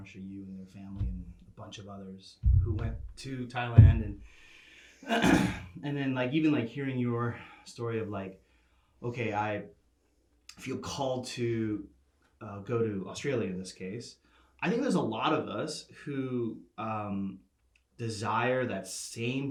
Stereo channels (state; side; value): identical; both; correlation 1.00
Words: you and their family, and a bunch of others who went to Thailand, and and then like even like hearing your story of like, okay, I feel called to go to Australia in this case. I think there's a lot of us who desire that same